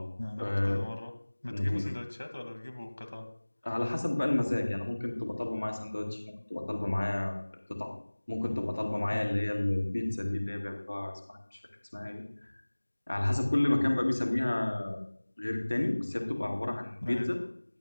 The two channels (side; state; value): both; inverted; correlation -1.00